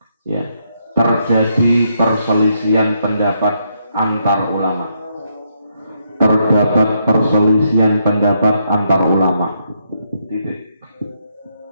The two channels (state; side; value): inverted; both; correlation -0.77